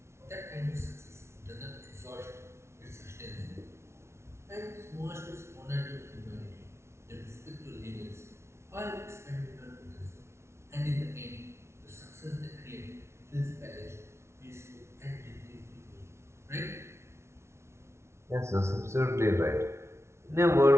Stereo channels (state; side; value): late; left; 0.13 ms